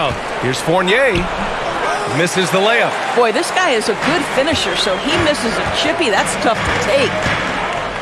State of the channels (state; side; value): identical; both; correlation 1.00